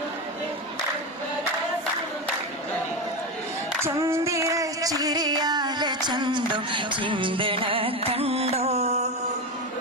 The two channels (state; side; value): normal; both; correlation 0.17